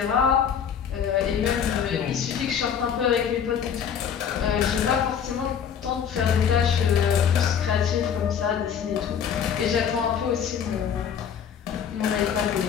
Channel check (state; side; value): quieter; right; 7.9 dB